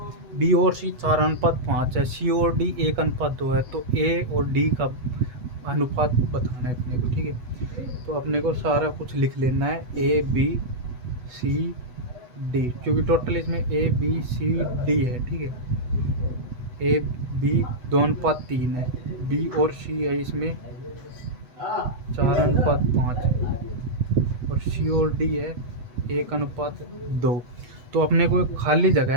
बी और सी 4:5 है, सी और डी 1:2 है। तो ए और डी का अनुपात बताना है अपने को, ठीक है। तो अपने को सारा कुछ लिख लेना है, ए बी सी डी, क्योंकि टोटल इसमें ए बी सी डी है, ठीक है। ए बी 2:3 है, बी और सी है इसमें 4:5 और सी और डी है 1:2। तो अपने को एक खाली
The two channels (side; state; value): left; late; 8.1 ms